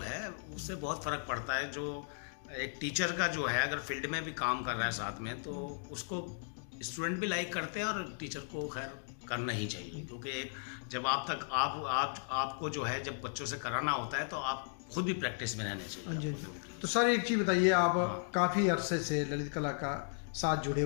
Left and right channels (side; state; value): right; silent; digital silence